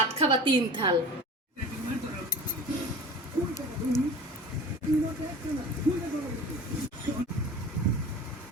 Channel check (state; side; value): normal; both; correlation 0.38